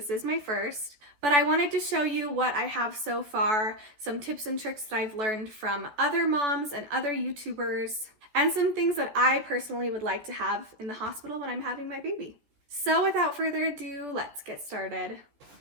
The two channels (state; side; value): late; left; 14 ms